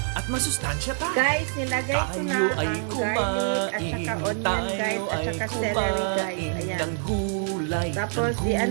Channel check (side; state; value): left; silent; digital silence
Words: at masustansya pa. Guys, nilagay ko na Tayo ay ang garlic at saka onion guys at saka celery guys. Ayan. ng gulay, Tapos,